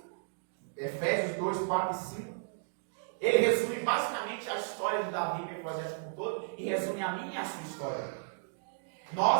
Efésios 2, 4 e 5, ele resume basicamente a história de Davi e Mefibosete como um todo, e resume a minha e a sua história.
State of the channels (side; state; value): left; silent; digital silence